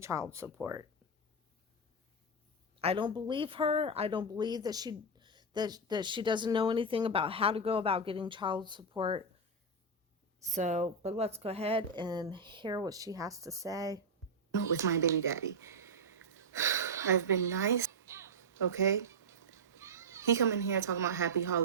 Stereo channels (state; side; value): normal; both; correlation 0.02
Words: child support. I don't believe her. I don't believe that she doesn't know anything about how to go about getting child support. So, but let's go ahead and hear what she has to say. With my baby daddy. I've been nice, okay? He come in here talking about happy